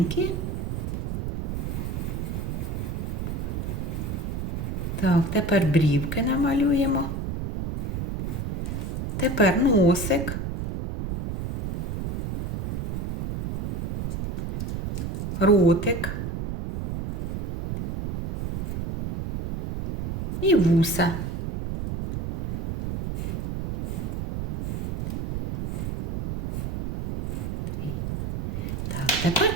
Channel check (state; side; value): noise; right; rumble, 4 dB below the sound